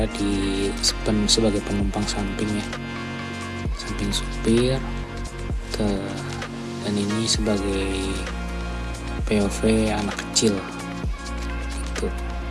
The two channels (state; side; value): identical; both; correlation 1.00